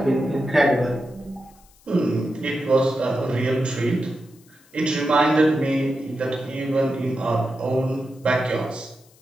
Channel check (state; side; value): noise; left; hiss, 29 dB below the sound